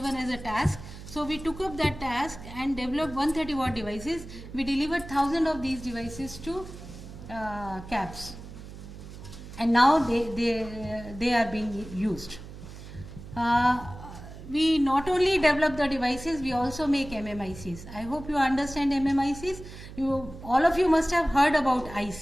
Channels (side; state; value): right; noise; hum, 14 dB below the sound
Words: as a task. So we took up that task and developed 130 watt devices. We delivered 1000 of these devices to CAPS, and now they are being used. We not only develop the devices, we also make MMICs. I hope you understand MMICs. All of you must have heard about